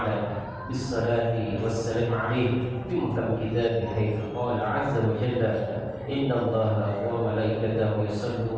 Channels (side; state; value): both; identical; correlation 1.00